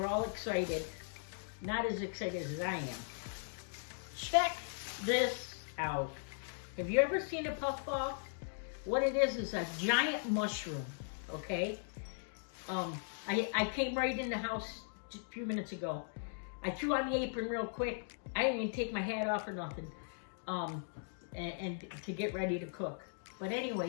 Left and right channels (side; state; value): right; silent; digital silence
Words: all excited. Not as excited as I am. Check this out. Have you ever seen a puffball? What it is a giant mushroom, okay? I came right in the house just a few minutes ago. I threw on the apron real quick. I didn't even take my hat off or nothing, and to get ready to cook. But